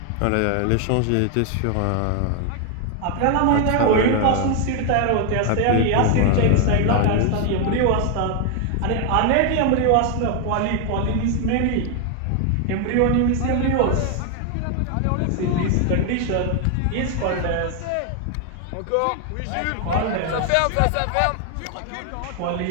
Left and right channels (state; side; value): different; both; correlation 0.01